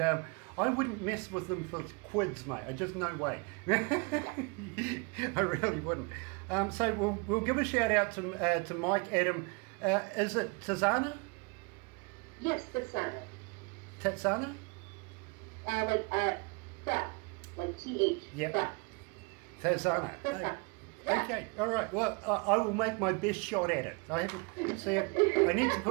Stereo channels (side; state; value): left; quieter; 30.6 dB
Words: wouldn't mess with them for quids, mate. I just no way. I really wouldn't. So we'll give a shout out to Mike, Adam. Is it Tazana? Yes, the Senate. Tatsana? Theft. Like TH. Yep. Theft. Tazana. The Senate. Yeah. Okay, all right. Well, I will make my best shot at it. I haven't see. I need to